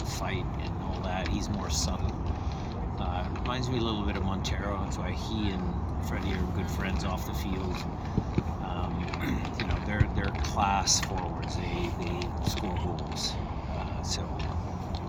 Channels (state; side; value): identical; both; correlation 1.00